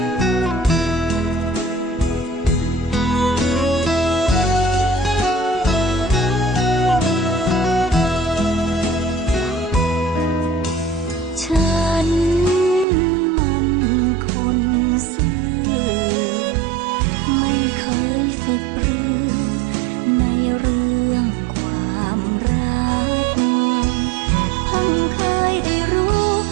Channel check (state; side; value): drops out; left; at 12.9 s